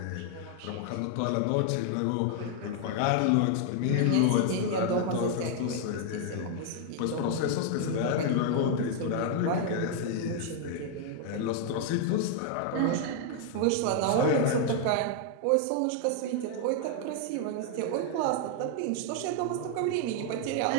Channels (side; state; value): both; different; correlation 0.00